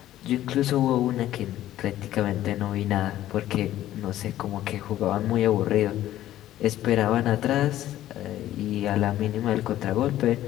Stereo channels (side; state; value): right; quieter; 13.4 dB